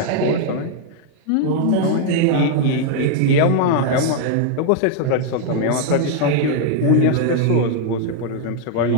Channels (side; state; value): both; different; correlation 0.00